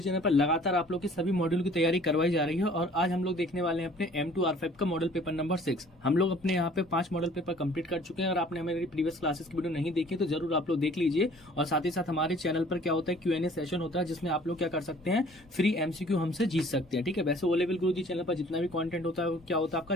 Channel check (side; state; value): both; normal; correlation 0.53